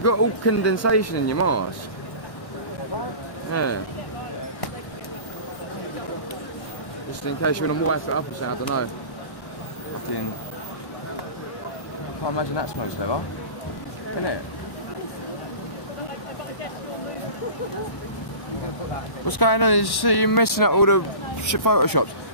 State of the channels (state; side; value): late; right; 1.1 ms